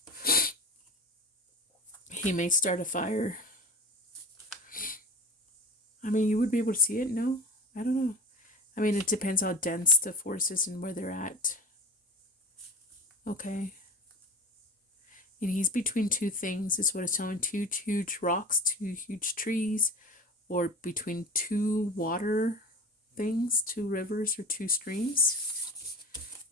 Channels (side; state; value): both; normal; correlation 0.32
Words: He may start a fire. I mean, you would be able to see it? No? I don't know. I mean, it depends how dense the force is and where they're at. Okay. And he's between two things, is what it's telling. Two huge rocks, two huge trees, or between two water things, two rivers or two streams.